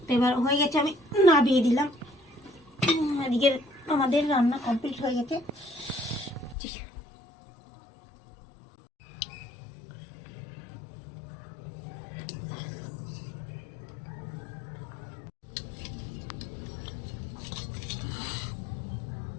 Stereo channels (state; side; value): drops out; right; at 6.6 s